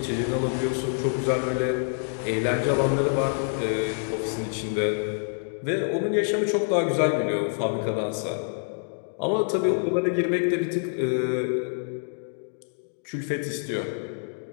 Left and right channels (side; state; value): right; silent; digital silence